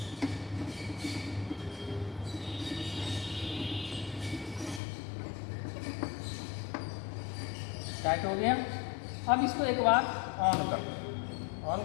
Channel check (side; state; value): right; drops out; at 4.8 s